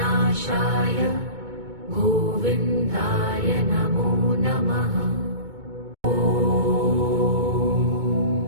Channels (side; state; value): left; late; 2.2 ms